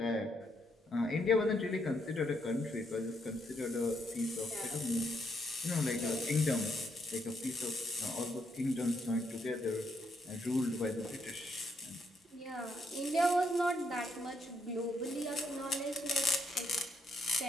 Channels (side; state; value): both; normal; correlation 0.76